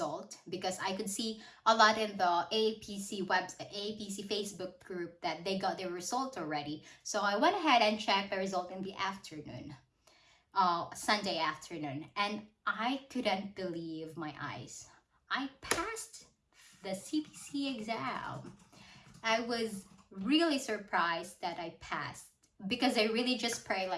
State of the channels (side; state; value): both; identical; correlation 1.00